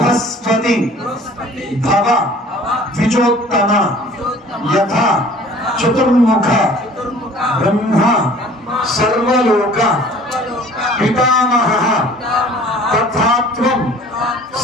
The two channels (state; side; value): normal; both; correlation 0.50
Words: భవ ద్విజోత్తమ యథా చతుర్ముఖ బ్రహ్మ సర్వలోక పితామహః తథాత్వం